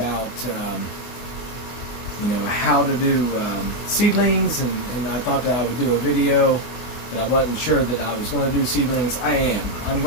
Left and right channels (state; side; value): late; right; 24 ms